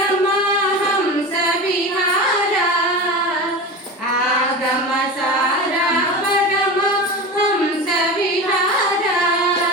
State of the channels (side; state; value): both; normal; correlation 0.27